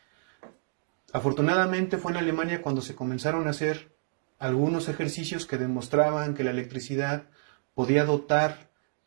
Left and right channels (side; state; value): left; silent; digital silence